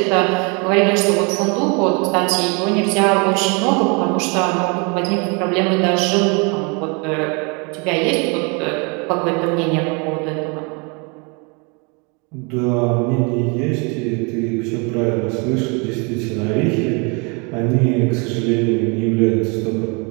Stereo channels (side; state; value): left; quieter; 32.2 dB